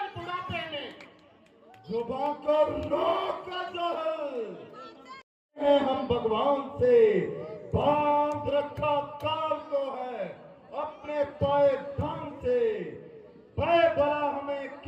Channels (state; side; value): identical; both; correlation 1.00